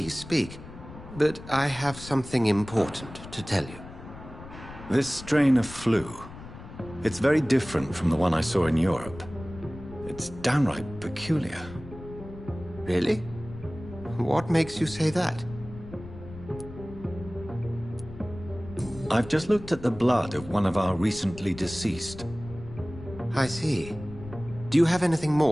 speak, but I have something important to tell you. This strain of flu, it's very different from the one I saw in Europe. It's downright peculiar. Really? What makes you say that? I've just looked at the blood of one of our recently deceased. I see. Do you have anything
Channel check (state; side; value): noise; left; rumble, 15 dB below the sound